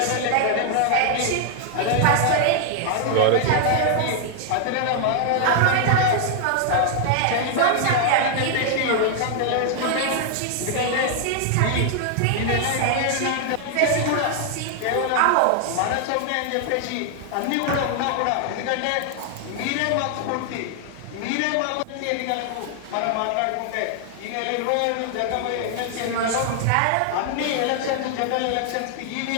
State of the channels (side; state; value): both; different; correlation 0.00